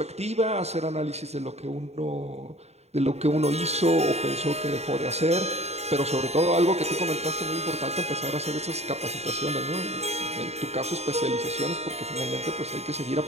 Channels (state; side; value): late; left; 0.31 ms